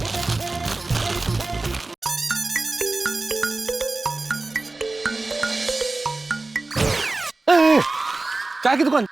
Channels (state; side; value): quieter; left; 3.3 dB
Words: चाय की दुकान।